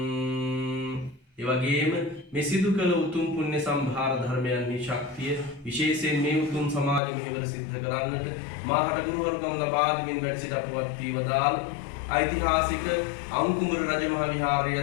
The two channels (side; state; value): right; drops out; at 7.0 s